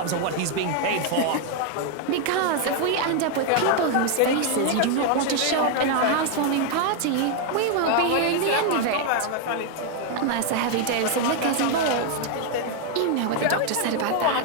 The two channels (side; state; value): both; different; correlation 0.00